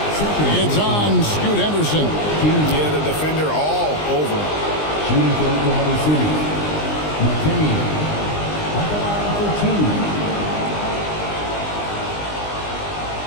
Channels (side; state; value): right; late; 20 ms